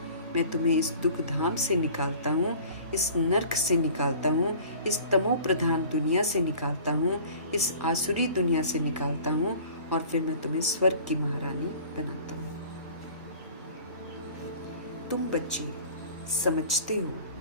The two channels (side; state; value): both; inverted; correlation -0.46